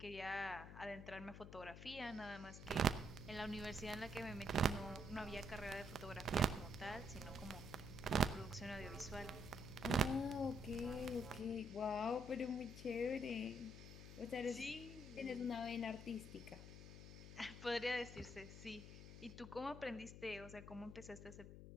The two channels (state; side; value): noise; left; hum, 12 dB below the sound